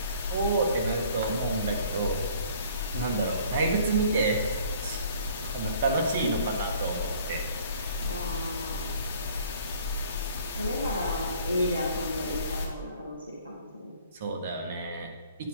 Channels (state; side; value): inverted; both; correlation -0.54